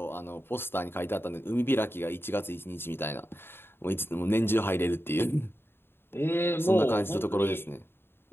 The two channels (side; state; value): right; late; 0.11 ms